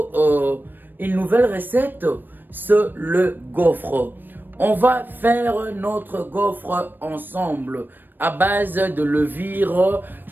une nouvelle recette. C'est le gaufre. On va faire notre gaufre ensemble à base de levure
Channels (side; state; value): left; late; 0.093 ms